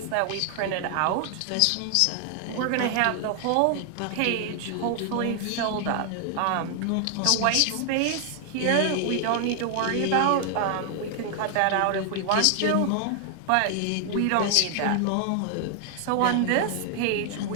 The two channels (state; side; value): different; both; correlation 0.00